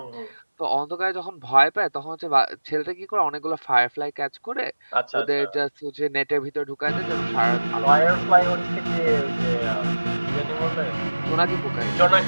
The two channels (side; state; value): both; inverted; correlation -1.00